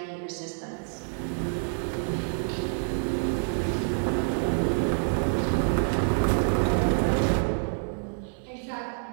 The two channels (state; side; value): silent; left; 60 dB below the other